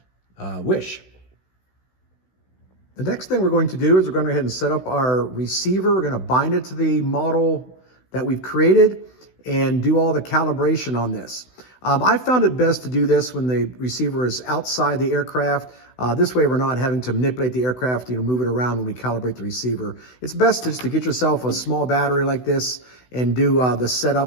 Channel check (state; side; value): late; right; 16 ms